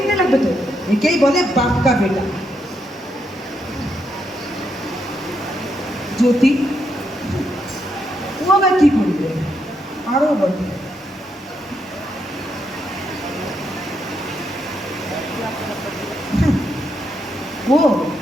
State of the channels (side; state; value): both; normal; correlation 0.79